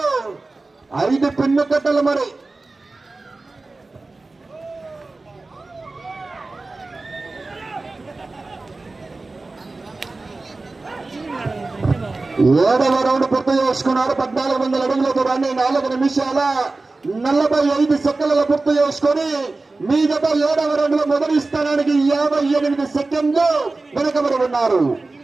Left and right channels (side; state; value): left; quieter; 3.4 dB